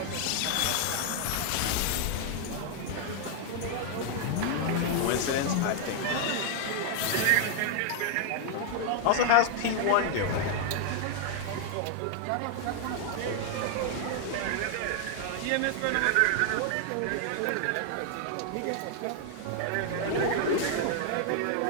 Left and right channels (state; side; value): different; both; correlation 0.00